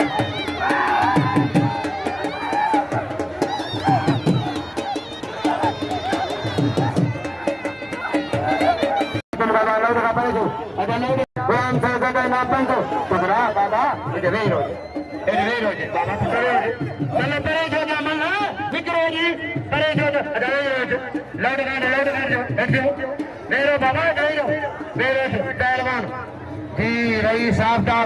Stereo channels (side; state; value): both; identical; correlation 1.00